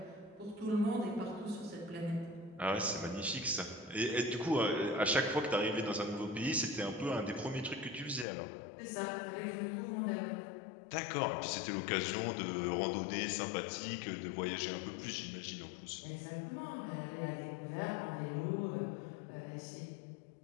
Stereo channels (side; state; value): right; drops out; at 8.2 s